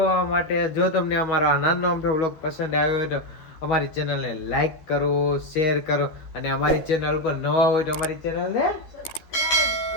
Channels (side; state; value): right; late; 13 ms